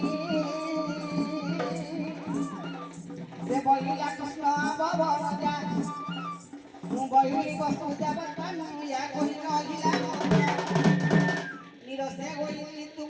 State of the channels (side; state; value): both; identical; correlation 1.00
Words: से बोलिया कृष्ण भवन जा বহিলি বস্তু দেবতানু ইয়া কহিল অগিলা নিরসে গইলি